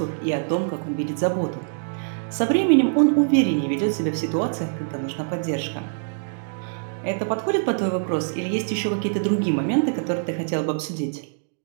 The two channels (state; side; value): silent; left; digital silence